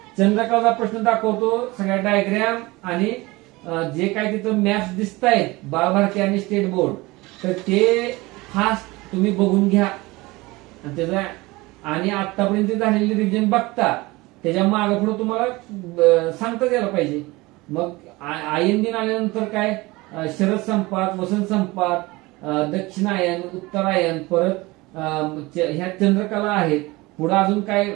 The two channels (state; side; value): quieter; left; 22.0 dB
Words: चंद्रकाचा प्रश्न दाखवतो, सगळ्या डायग्राम आणि जे काय तिथं मॅप्स दिसत आहेत बालभारती आणि स्टेट बोर्ड, तर ते फास्ट तुम्ही बघून घ्या. आणि त्याचा आणि आतापर्यंत झालेली रिव्हिजन बघता त्याच्या मागे पुढे तुम्हाला सांगता यायला पाहिजे. मग आयन दिन आल्यानंतर काय, शरद संपात, वसंत संपात, दक्षिणायन, उत्तरायण, परत ह्या चंद्रकला आहेत. पुढे अजून काय